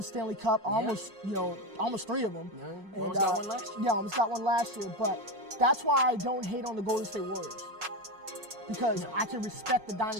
Stanley Cup, almost 3 of them. Yeah, almost got one last year. Yeah, almost got one last year. But that's why I don't hate on the Golden State Warriors. Because I can respect the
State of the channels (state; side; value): late; left; 5.5 ms